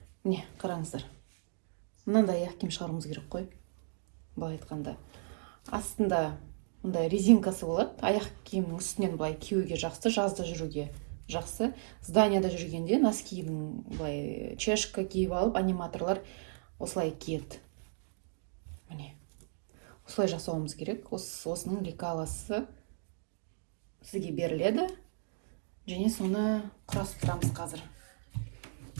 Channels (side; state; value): left; silent; digital silence